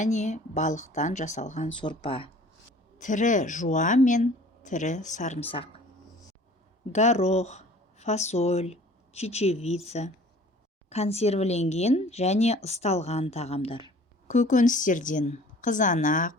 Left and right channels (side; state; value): both; normal; correlation 0.49